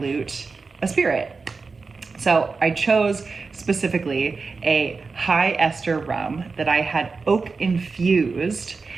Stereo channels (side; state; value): left; quieter; 4.4 dB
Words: a spirit. So I chose specifically a high ester rum that I had oak-infused